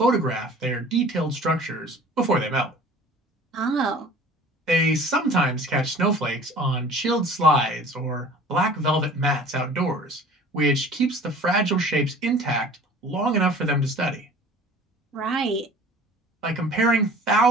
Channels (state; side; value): normal; both; correlation 0.46